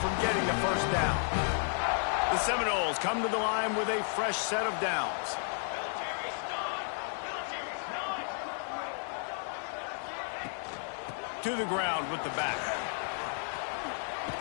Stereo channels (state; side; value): silent; right; 56 dB below the other